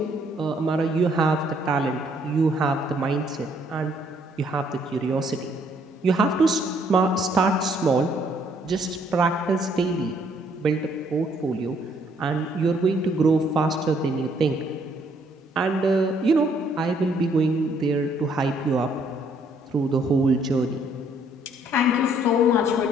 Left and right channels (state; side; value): normal; both; correlation 0.66